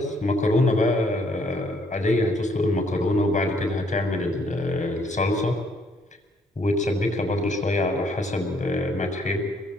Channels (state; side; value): normal; both; correlation 0.67